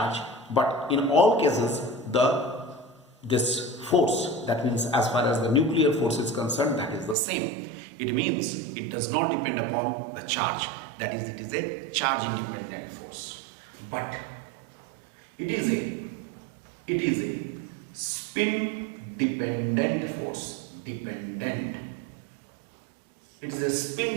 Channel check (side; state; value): left; drops out; at 7.2 s